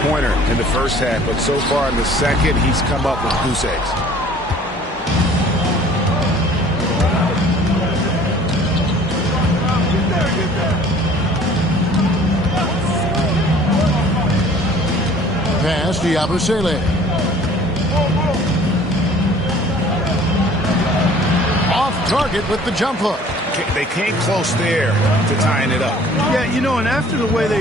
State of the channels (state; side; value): normal; both; correlation 0.51